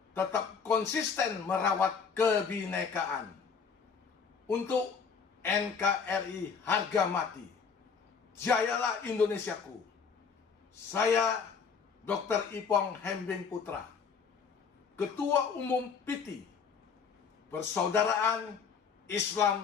tetap konsisten merawat kebinekaan untuk NKRI harga mati. Jayalah Indonesiaku. Saya Dr. Ipong Hembing Putra, Ketua Umum PT Persaudaraan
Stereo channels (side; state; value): right; quieter; 6.0 dB